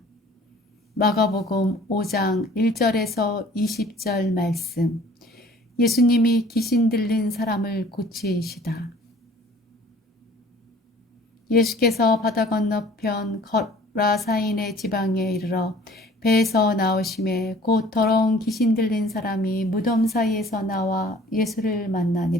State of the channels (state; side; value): normal; both; correlation 0.51